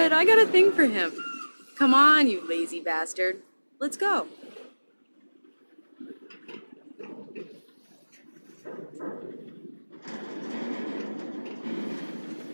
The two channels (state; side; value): inverted; both; correlation -1.00